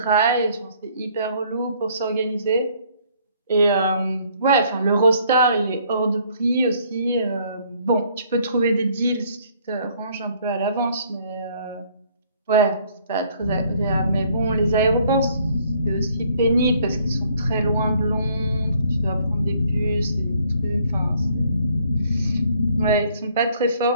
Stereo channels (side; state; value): both; inverted; correlation -0.62